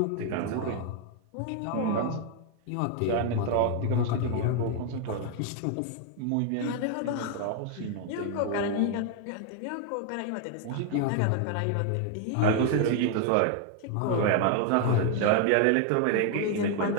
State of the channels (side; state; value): both; different; correlation 0.00